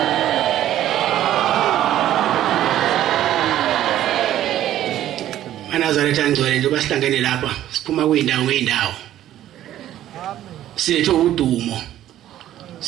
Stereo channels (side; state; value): left; quieter; 12.6 dB